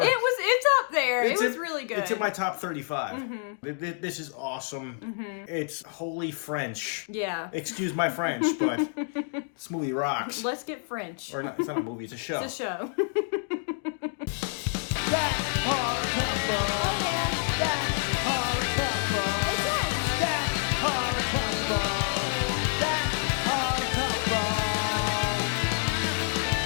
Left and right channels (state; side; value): silent; right; 59 dB below the other